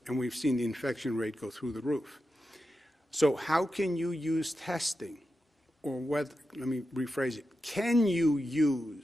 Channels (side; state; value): both; normal; correlation 0.90